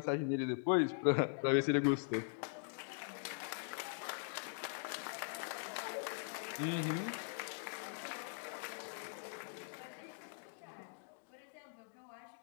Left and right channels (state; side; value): silent; right; digital silence